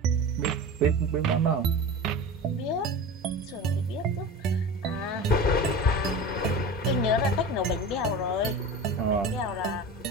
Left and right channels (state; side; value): normal; both; correlation 0.31